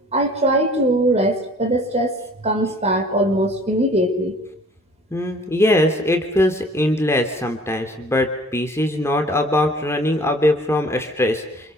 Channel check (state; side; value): normal; both; correlation 0.51